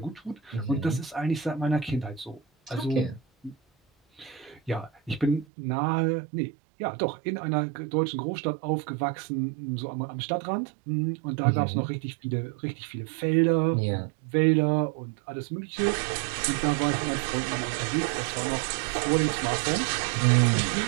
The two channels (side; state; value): left; drops out; at 5.5 s